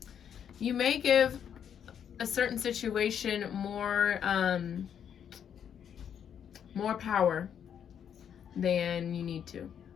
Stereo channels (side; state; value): right; quieter; 8.5 dB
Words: you may give a certain situation more power than you need to.